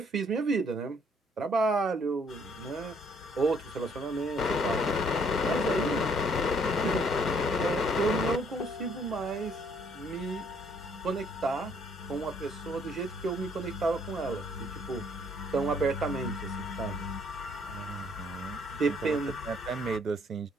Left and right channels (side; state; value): both; normal; correlation 0.65